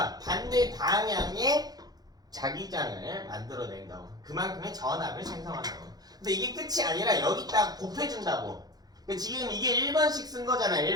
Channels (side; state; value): left; late; 0.19 ms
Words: 반대 방향의 자기장을 만들어낸다고. 그만큼의 전압을 생성한다고. 근데 이게 끝이 아니라 여기다가 곱해준다고. 지금 이게 1번씩 쓴 거잖아.